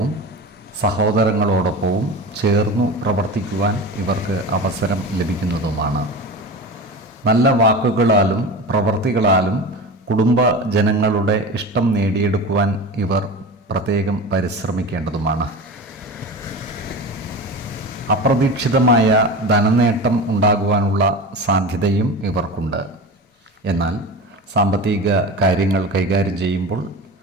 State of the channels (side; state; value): both; normal; correlation 0.30